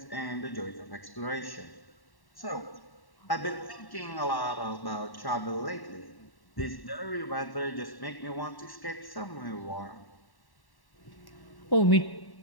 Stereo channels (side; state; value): right; late; 1.1 ms